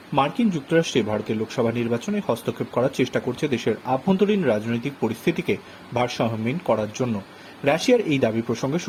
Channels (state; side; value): identical; both; correlation 1.00